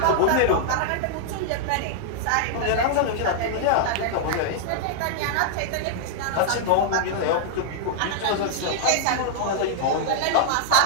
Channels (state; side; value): different; both; correlation -0.01